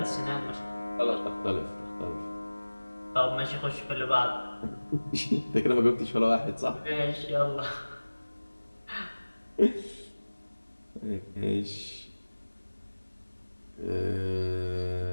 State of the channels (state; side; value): inverted; both; correlation -1.00